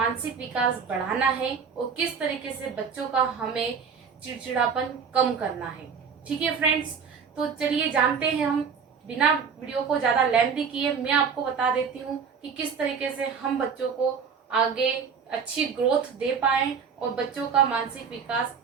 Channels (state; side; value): quieter; left; 6.2 dB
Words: विकास बढ़ाना है और किस तरीके से बच्चों का हमें चिड़चिड़ापन कम करना है। ठीक है फ्रेंड्स, तो चलिए जानते हैं हम। बिना वीडियो को ज्यादा लेंथी किए मैं आपको बता देती हूँ कि किस तरीके से हम बच्चों को आगे अच्छी ग्रोथ दे पाए और बच्चों का मानसिक विकास